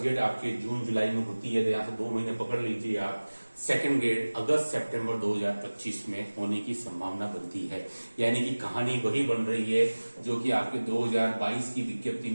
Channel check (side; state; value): both; inverted; correlation -1.00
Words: आपके जून जुलाई में होती है तो यहाँ से 2 महीने पकड़ लीजिए आप, सेकंड ग्रेड अगस्त सितंबर 2025 में होने की संभावना बनती है। यानी कि कहानी वही बन रही है जो कि आपके 2022 की विज्ञप्ति